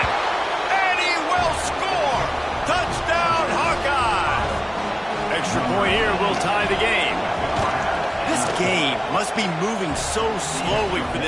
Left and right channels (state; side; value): identical; both; correlation 1.00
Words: and he will score! Touchdown, Hawkeye! Extra point here will tie the game. This game must be moving so slowly for